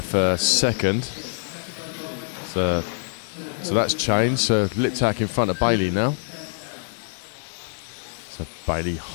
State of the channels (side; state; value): right; silent; digital silence